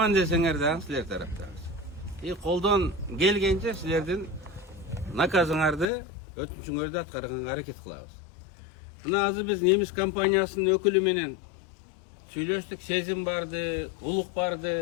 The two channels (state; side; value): drops out; right; at 5.9 s